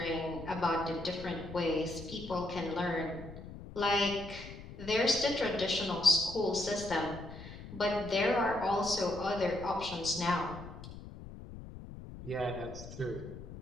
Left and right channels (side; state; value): left; noise; rumble, 13 dB below the sound